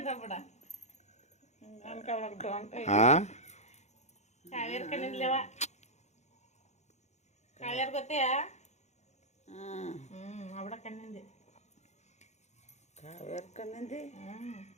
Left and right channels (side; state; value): right; late; 0.33 ms